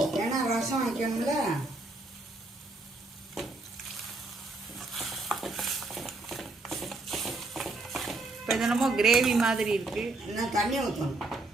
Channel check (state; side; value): quieter; left; 3.1 dB